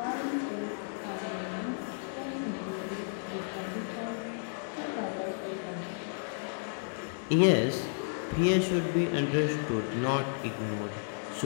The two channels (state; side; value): silent; right; digital silence